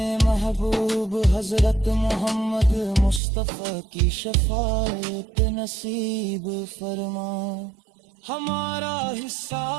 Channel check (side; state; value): left; drops out; at 3.2 s